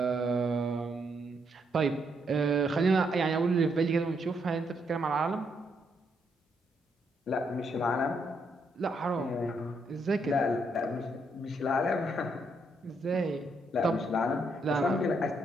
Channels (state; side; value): normal; both; correlation 0.76